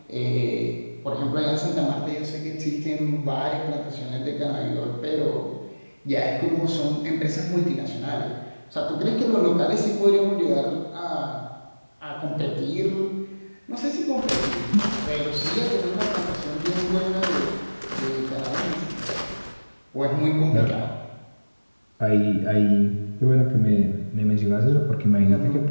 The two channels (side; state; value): both; inverted; correlation -1.00